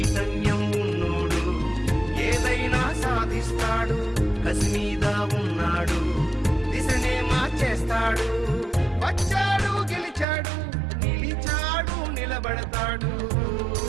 ఉన్నోడు ఏదైనా సాధిస్తాడు. కసి మీద ఉన్నాడు, దిశనే మార్చేస్తాడు. వచ్చాడు గెలిచాడు, నిలిచాడు నిలబడతాడు.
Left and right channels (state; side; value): drops out; left; at 10.2 s